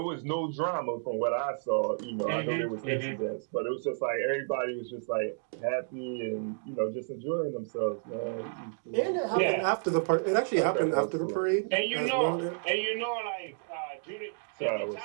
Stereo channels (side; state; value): left; silent; digital silence